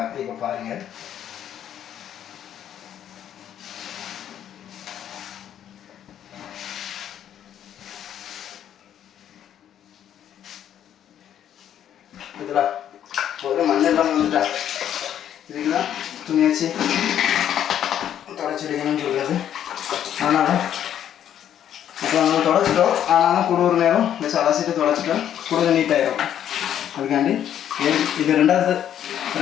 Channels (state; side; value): quieter; right; 10.2 dB